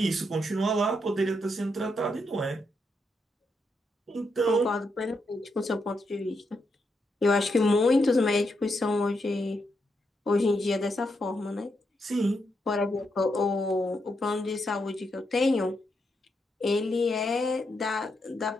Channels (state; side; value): normal; both; correlation 0.81